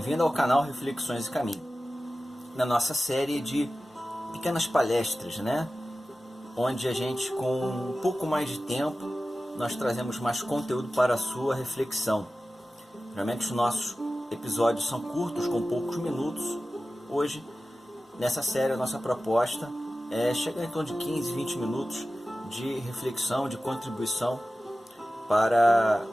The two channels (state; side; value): normal; both; correlation 0.95